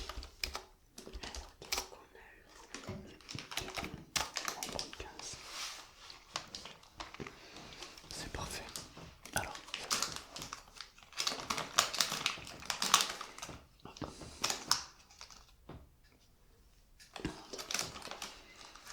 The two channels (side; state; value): both; identical; correlation 1.00